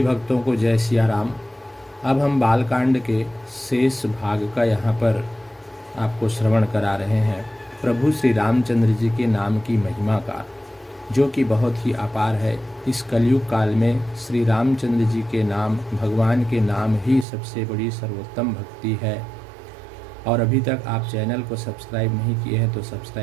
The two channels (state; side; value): drops out; left; at 17.2 s